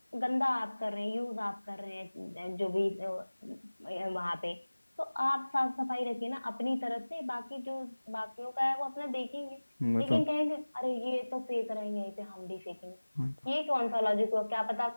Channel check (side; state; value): both; inverted; correlation -1.00